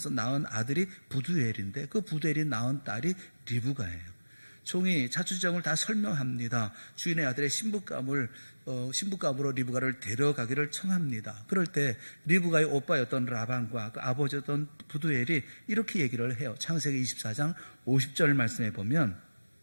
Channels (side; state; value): both; inverted; correlation -1.00